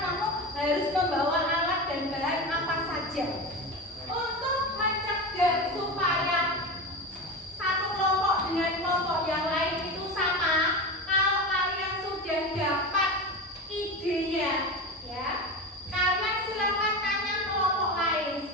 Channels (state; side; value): normal; both; correlation 0.24